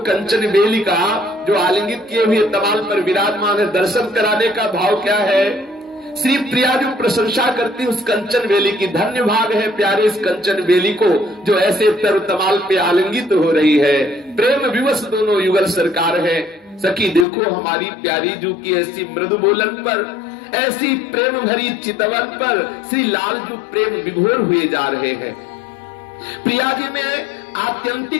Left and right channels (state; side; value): drops out; right; at 17.2 s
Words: कंचन बेली का जो आलिंगित किए हुए तमाल पर विराजमान है, दर्शन कराने का भाव क्या है। श्री प्रिया जो प्रशंसा करती उस कंचन बेली की, धन्य भाग है प्यारे इस कंचन बेली को जो ऐसे तर तमाल पे आलिंगित हो रही है। प्रेम विवश दोनों युगल सरकार है। सखी देखो हमारी प्यारी जू की ऐसी मृदु बोलन पर, ऐसी प्रेम भरी चितवन पर श्री लालजू प्रेम विभोर हुए जा रहे हैं। प्रिया जी में